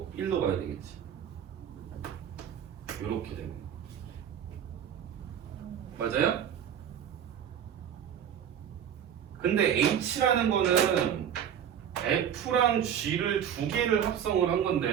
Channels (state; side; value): quieter; left; 9.0 dB